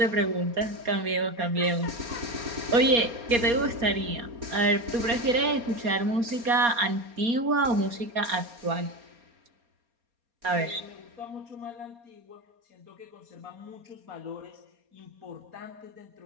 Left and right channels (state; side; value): late; left; 4.2 ms